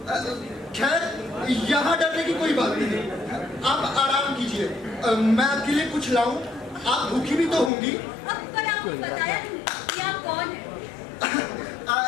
खैर, यहाँ डरने की कोई बात नहीं। आप आराम कीजिए, मैं आपके लिए कुछ लाऊं। आप भूखी भी तो होंगी। अब पर आपको बताया नहीं कि आप कौन हैं?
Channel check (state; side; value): drops out; right; at 7.7 s